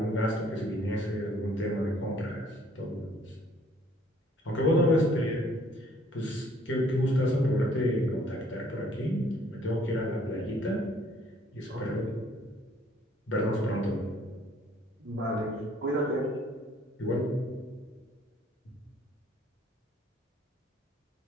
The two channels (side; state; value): both; normal; correlation 0.61